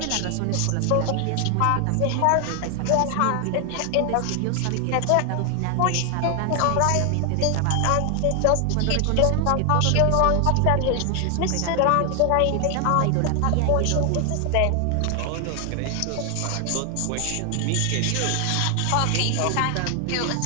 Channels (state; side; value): different; both; correlation 0.00